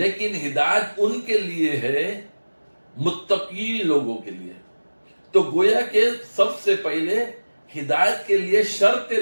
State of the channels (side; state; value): both; inverted; correlation -1.00